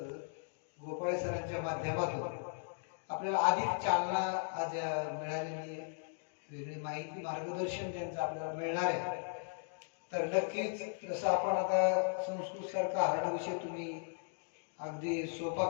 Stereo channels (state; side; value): silent; right; digital silence